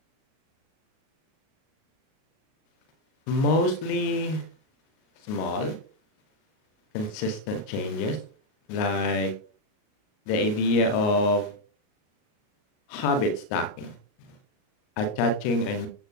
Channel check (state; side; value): late; right; 38 ms